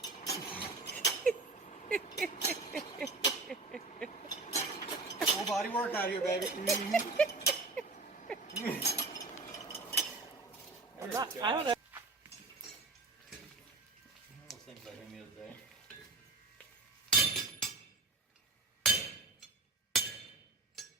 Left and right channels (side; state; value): left; quieter; 3.5 dB